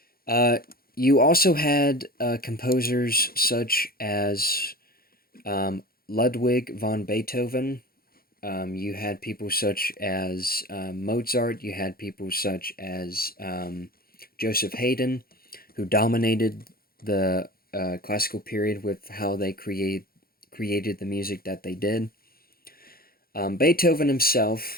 Uh, you also had composers such as Ludwig von Beethoven. You had people such as Mozart. You had people such as Joseph Haydn, who dominated the classical period with how they created the music that they did. Beethoven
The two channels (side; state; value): right; late; 0.43 ms